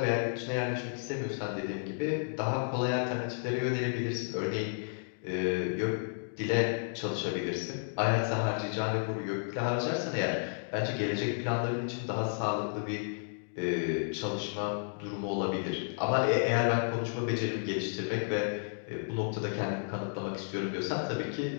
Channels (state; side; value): silent; right; digital silence